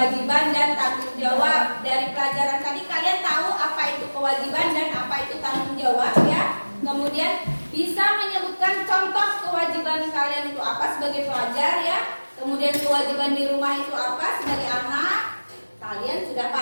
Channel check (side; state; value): both; inverted; correlation -1.00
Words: dan tanggung jawab. Dari pelajaran tadi kalian tahu apa itu kewajiban dan apa itu tanggung jawab ya. Kemudian bisa menyebutkan contoh kewajiban kalian itu apa sebagai pelajar ya. Kemudian kewajiban di rumah itu apa sebagai anak. Kalian sudah